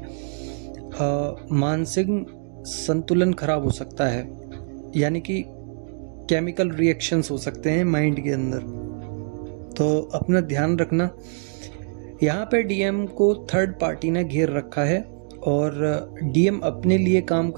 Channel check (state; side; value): silent; left; digital silence